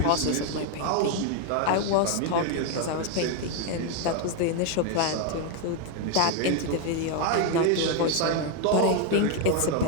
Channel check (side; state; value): both; different; correlation 0.00